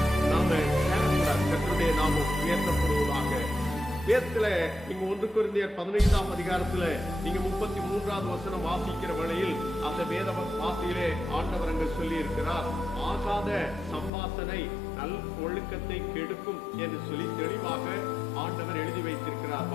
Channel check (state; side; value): drops out; right; at 14.1 s